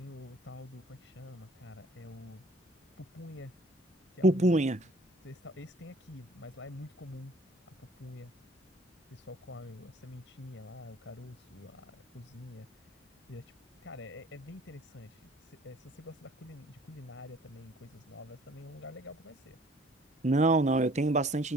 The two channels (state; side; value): normal; both; correlation 0.55